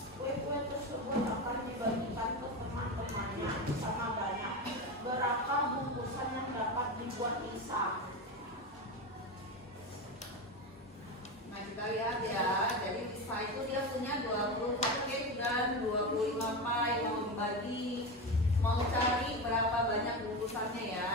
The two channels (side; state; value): both; normal; correlation 0.19